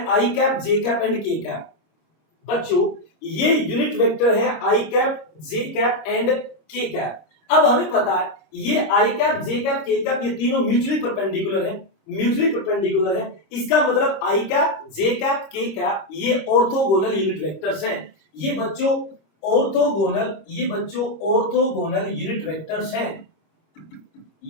आई कैप, जे कैप एंड के कैप। बच्चों ये यूनिट वेक्टर है आई कैप, जे कैप एंड के कैप। अब हमें पता है ये आई कैप, जे कैप, के कैप ये तीनों म्यूचुअली परपेंडिकुलर है, म्यूचुअली परपेंडिकुलर है। इसका मतलब आई कैप, जे कैप, के कैप ये ऑर्थोगोनल यूनिट वेक्टर्स हैं। ये बच्चों ऑर्थोगोनल, ये बच्चों ऑर्थोगोनल यूनिट वेक्टर्स हैं।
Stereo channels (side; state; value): right; late; 26 ms